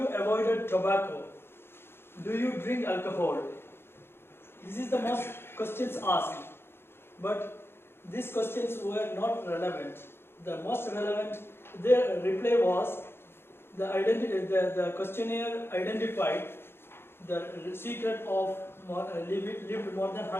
avoided tobacco? Do you drink alcohol? This is the most questions asked. But these questions were not relevant. The most relevant, their reply was, the questionnaire identified the secret of lived more than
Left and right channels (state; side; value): late; right; 0.11 ms